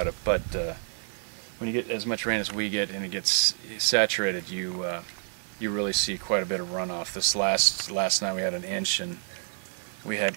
it. But when you get as much rain as we get and it gets saturated, you really see quite a bit of runoff. This last night we had an inch, and we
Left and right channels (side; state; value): left; silent; 59 dB below the other